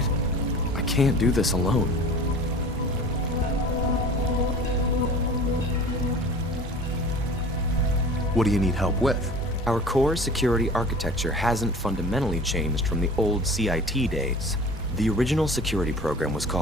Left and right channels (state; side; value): normal; both; correlation 0.41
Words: I can't do this alone. What do you need help with? Our core security architecture hasn't fundamentally changed from the old CIT days. The original security program was